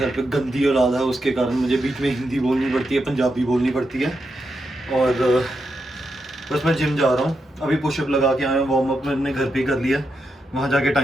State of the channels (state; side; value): normal; both; correlation 0.85